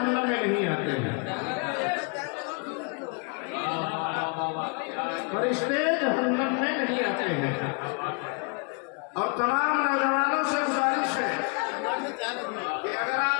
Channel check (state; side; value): quieter; right; 34.8 dB